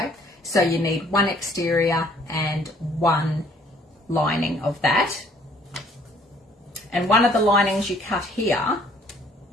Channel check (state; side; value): normal; both; correlation 0.60